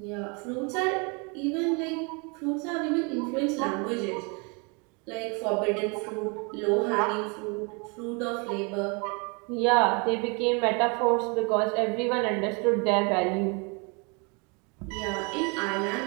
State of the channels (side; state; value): left; quieter; 32.4 dB